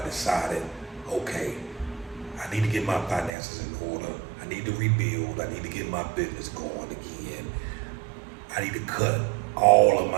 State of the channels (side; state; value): left; drops out; at 3.3 s